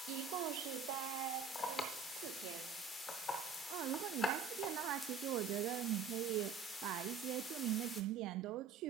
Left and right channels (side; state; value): left; quieter; 5.6 dB